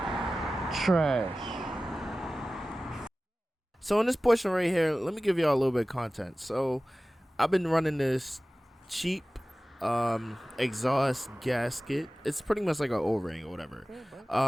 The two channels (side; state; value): both; normal; correlation 0.97